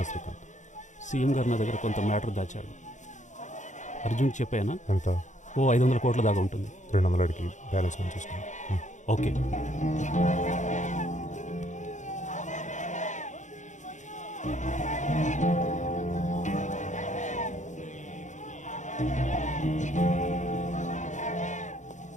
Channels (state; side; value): late; right; 0.35 ms